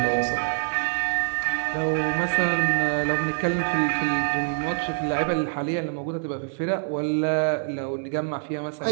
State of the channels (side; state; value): left; silent; digital silence